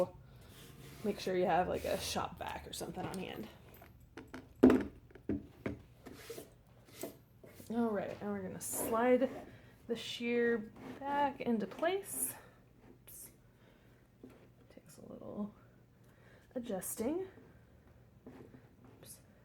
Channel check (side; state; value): both; identical; correlation 1.00